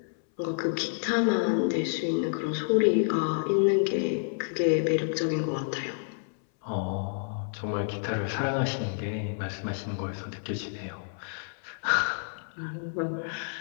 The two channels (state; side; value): silent; right; 58 dB below the other